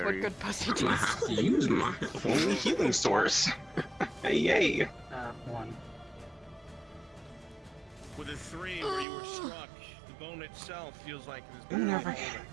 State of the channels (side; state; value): left; drops out; at 9.1 s